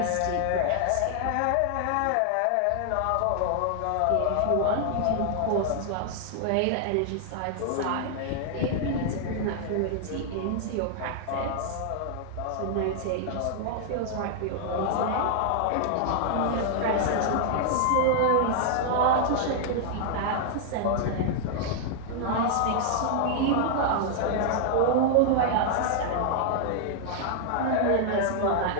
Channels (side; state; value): both; different; correlation -0.01